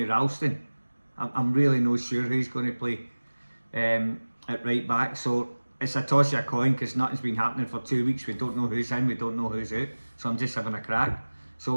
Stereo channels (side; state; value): both; inverted; correlation -1.00